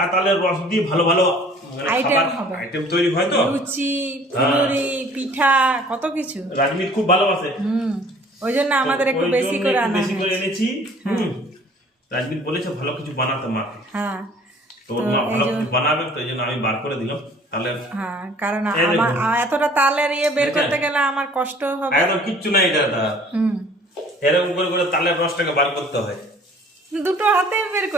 তালের রস দিয়ে ভালো ভালো আইটেম হবে, আইটেম তৈরি হয় তো, লুচি, ফুলুরি, পিঠা, কত কিছু। রাজমিত খুব ভালোবাসে। ওই জন্য আমাদের একটু বেশি করে আনা বেশি করে এনেছি। রাজমিত বলেছে ভালো কিছু বানাতে মাকে। হ্যাঁ, তো মা ভালো কিছু বানাবে, তো এই জন্য আমি বার করে দিলাম তাহলে। হ্যাঁ, কারণ আমার এতটা তালের ইয়ে বের করতে গেলে আমার কষ্ট হবে। একদম কিচ্ছু নাই এটা। এরকম করে করে তালের রসটাকে বার করতে হয়। দুটো হাতে বের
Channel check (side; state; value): both; normal; correlation 0.52